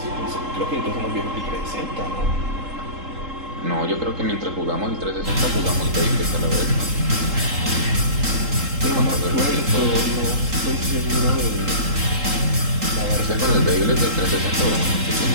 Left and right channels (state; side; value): late; left; 3.8 ms